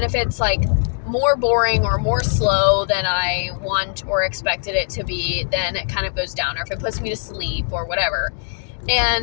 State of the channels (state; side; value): silent; right; digital silence